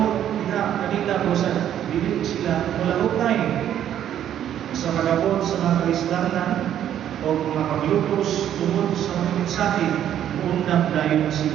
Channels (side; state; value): left; quieter; 10.6 dB